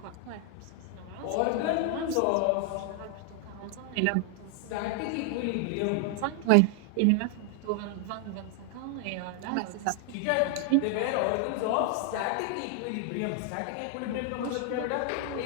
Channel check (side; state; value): both; different; correlation 0.00